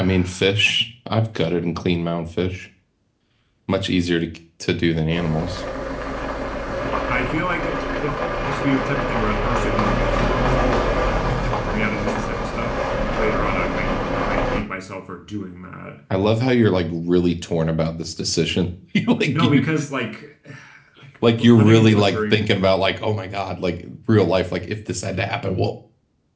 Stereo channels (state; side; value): identical; both; correlation 1.00